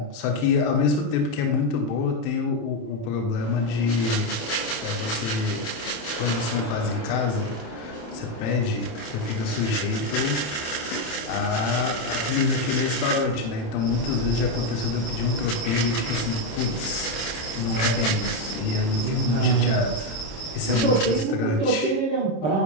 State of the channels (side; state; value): right; late; 27 ms